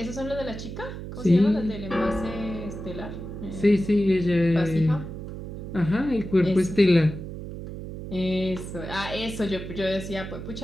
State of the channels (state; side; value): noise; right; hum, 9 dB below the sound